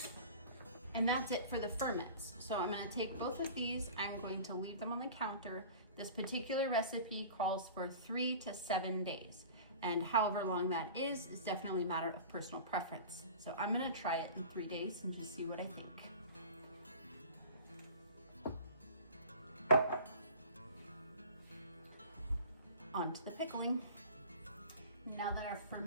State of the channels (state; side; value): inverted; both; correlation -0.39